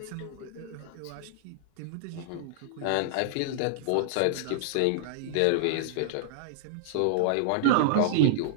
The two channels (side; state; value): both; different; correlation -0.02